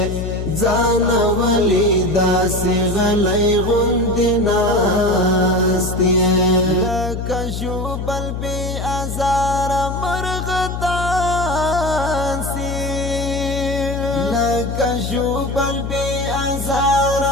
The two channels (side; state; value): left; noise; hum, 4 dB below the sound